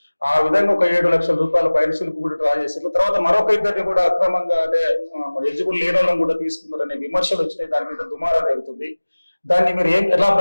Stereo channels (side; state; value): both; inverted; correlation -1.00